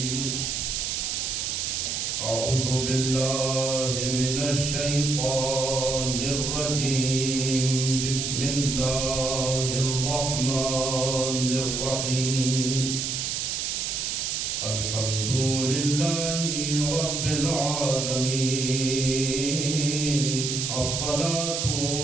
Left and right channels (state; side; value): noise; right; hiss, 1 dB below the sound